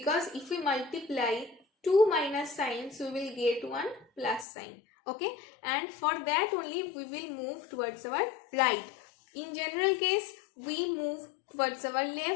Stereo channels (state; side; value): drops out; right; at 4.5 s